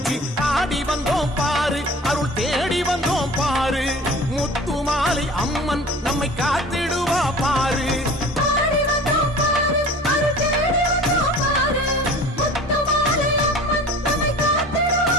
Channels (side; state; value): both; normal; correlation 0.42